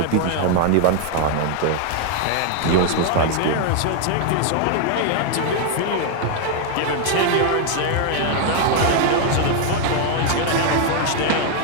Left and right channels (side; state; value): both; different; correlation 0.00